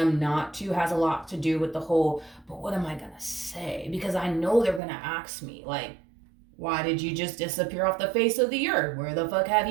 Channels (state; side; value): drops out; left; at 4.8 s